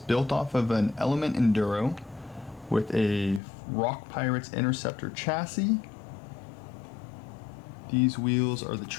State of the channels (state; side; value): drops out; right; at 3.4 s